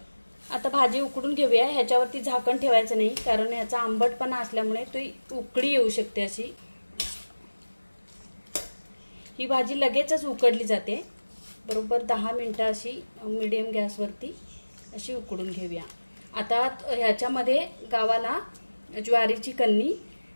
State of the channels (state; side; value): inverted; both; correlation -1.00